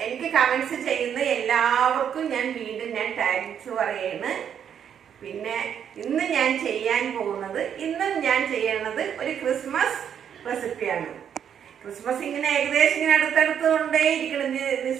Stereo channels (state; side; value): quieter; left; 8.6 dB